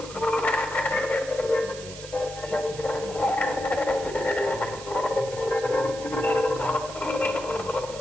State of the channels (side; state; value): right; noise; hiss, 14 dB below the sound